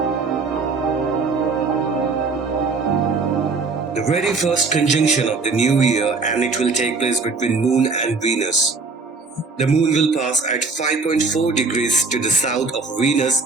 The very first conjunction of the new year, and it will take place between Moon and Venus. The Moon will pass at 5.4 degrees to the south of Venus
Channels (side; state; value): left; quieter; 4.1 dB